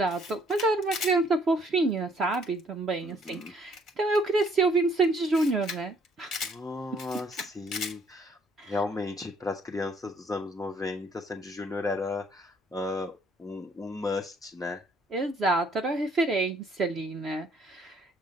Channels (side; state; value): both; normal; correlation 0.63